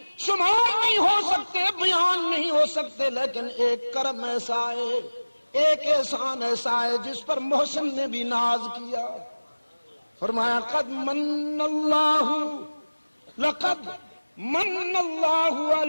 شمار نہیں ہو سکتے، بیان نہیں ہو سکتے، لیکن ایک کرم ایسا ہے، ایک احسان ایسا ہے جس پر محسن نے بھی ناز کیا۔ فرمایا قد من اللہ، لقد من اللہ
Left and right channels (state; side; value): inverted; both; correlation -1.00